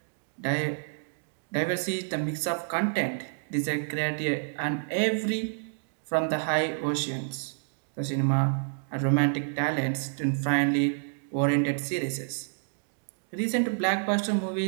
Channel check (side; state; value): left; silent; digital silence